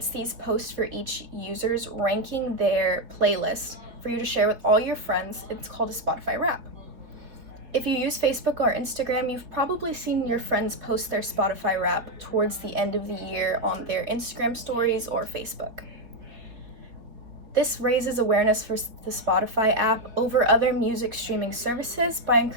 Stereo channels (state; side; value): late; left; 4.2 ms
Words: these posts for each user's ranking their playlist for you to share with all your friends. It's called a Spotify Wrap. If you use Facebook or Instagram, you've probably seen your friends post their Spotify Wrap towards the end of the year on their Instagram stories or Facebook. This raises awareness for the Spotify app over other music streaming services by